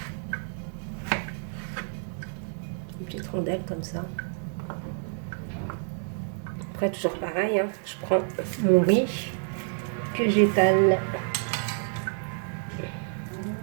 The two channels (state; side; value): silent; left; 57 dB below the other